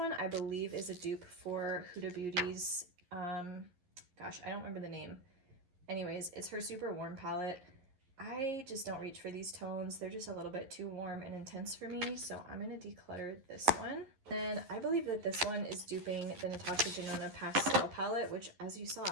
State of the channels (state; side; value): late; left; 11 ms